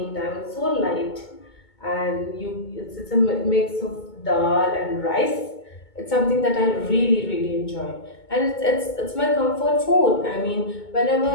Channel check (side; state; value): right; late; 2.2 ms